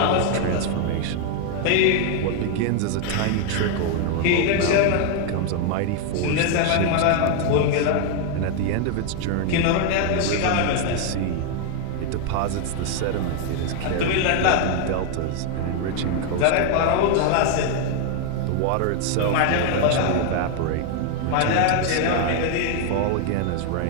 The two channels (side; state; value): both; different; correlation 0.00